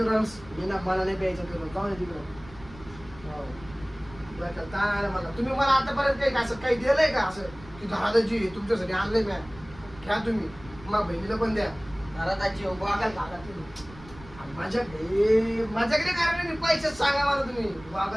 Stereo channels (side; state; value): right; noise; rumble, 19 dB below the sound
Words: रस मी ना मला नाही प्यायचं ते रस जाऊ दे तिकडं हो. बरं का, ताण आला मला तुम्ही मला आतापर्यंत काही असं काही दिलंय का असं की दादाजी तुमच्यासाठी आणलंय म्या घ्या तुम्ही मग बहिणीला पण द्या घरात आजी वागायला घाला तुम्ही. माझ्याकडे कारण मी पैसे सांगा मला तुम्ही